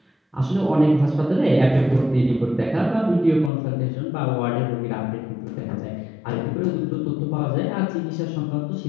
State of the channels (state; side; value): drops out; right; at 3.5 s